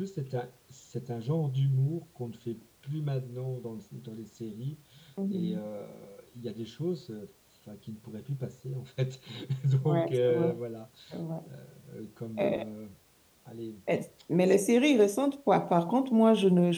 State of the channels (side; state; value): both; identical; correlation 1.00